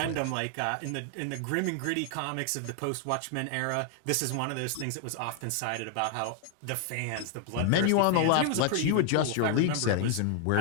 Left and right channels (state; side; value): different; both; correlation 0.00